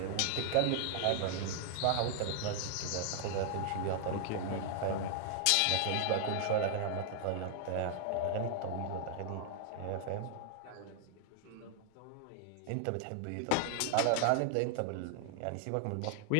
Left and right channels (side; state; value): both; different; correlation 0.00